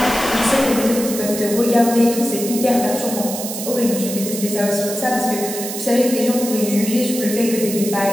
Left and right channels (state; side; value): noise; right; hiss, 7 dB below the sound